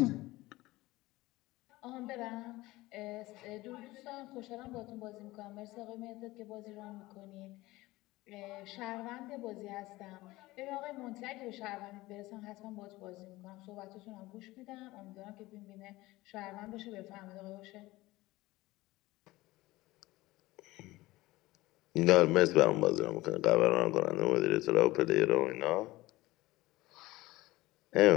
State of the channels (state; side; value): quieter; right; 19.1 dB